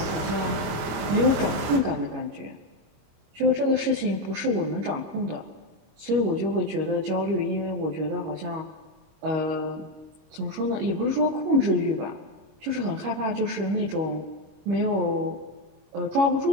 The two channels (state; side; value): late; left; 26 ms